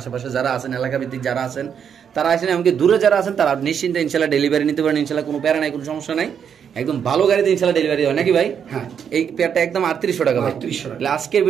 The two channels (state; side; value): quieter; left; 7.8 dB